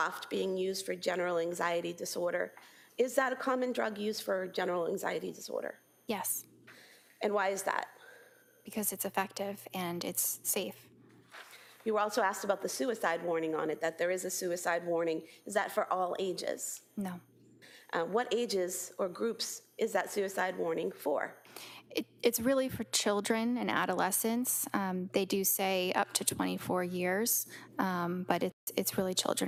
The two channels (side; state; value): both; identical; correlation 1.00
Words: being used for general anxiety disorder. Is that a common drug used for general anxiety disorder? Yes. And why is that? Because it's effective and it's safe. You were also asked about the suicide warning on it, that there is a suicide warning. Is that for all ages? No. What ages or groups is that suicide warning for? It's really for children and adolescents. They do say up to 24 years, but it's really